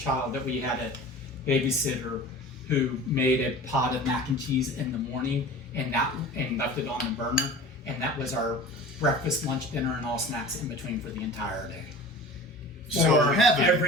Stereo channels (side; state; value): both; normal; correlation 0.38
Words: that we had a babysitter who made a pot of mac and cheese in the morning and left it on the burner, and that was our breakfast, lunch, dinner, and all snacks in between for the entire day. so For heaven.